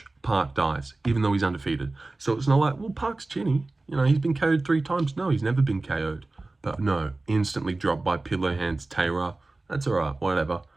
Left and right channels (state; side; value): quieter; left; 3.2 dB